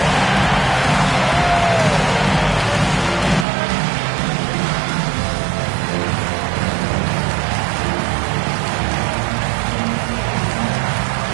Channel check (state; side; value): drops out; left; at 3.5 s